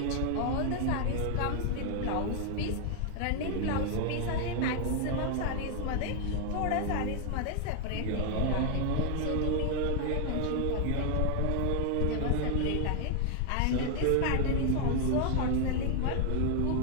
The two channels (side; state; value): both; different; correlation 0.00